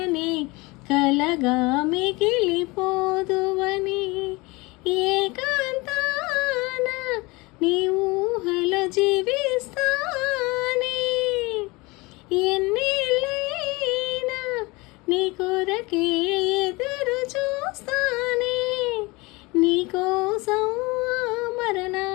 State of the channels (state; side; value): quieter; right; 24.2 dB